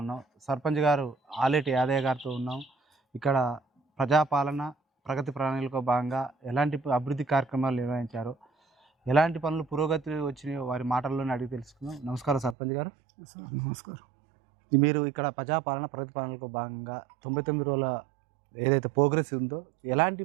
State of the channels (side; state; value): left; drops out; at 12.6 s